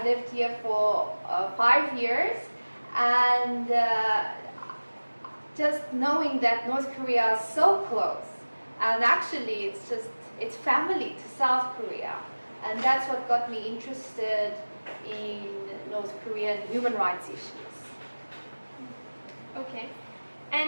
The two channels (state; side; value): inverted; both; correlation -1.00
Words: lived here for 5 years, and just knowing that North Korea is so close, and actually it's family to South Korea. And that's what got me interested in North Korean human rights issues. Okay.